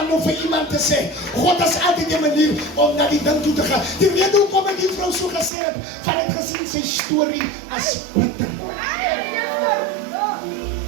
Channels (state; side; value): drops out; left; at 5.5 s